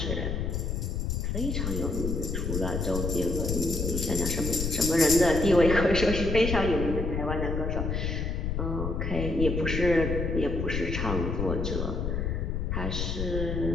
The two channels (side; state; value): left; noise; rumble, 1 dB below the sound